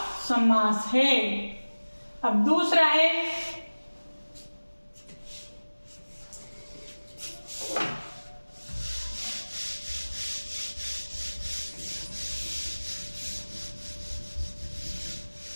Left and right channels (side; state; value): both; inverted; correlation -1.00